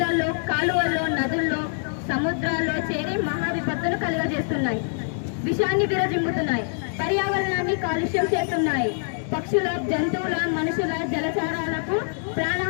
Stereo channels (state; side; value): silent; right; digital silence